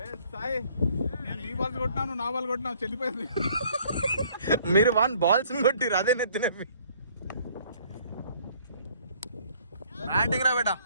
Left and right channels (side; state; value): both; inverted; correlation -0.59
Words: నీ బాల్ కొట్టినాను, నా బాల్ కొట్టినా, చెల్లిపోయింది. మీరు 1 balls కొట్టిరు, అదే నెత్తినవి. బ్యాటింగ్ రా బేటా.